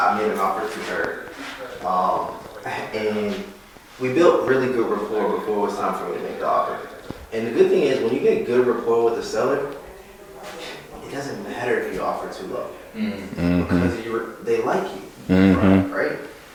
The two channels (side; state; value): both; identical; correlation 1.00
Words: made an offer to her, and we built really good rapport before it was time for me to make the offer. And the good thing is, when you get good rapport with the seller, it doesn't matter if you offer too low because they like you, right?